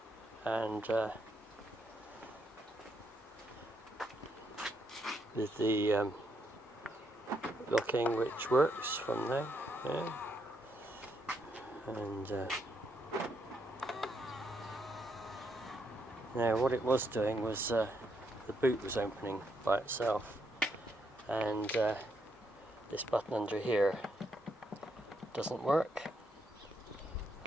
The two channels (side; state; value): both; normal; correlation 0.77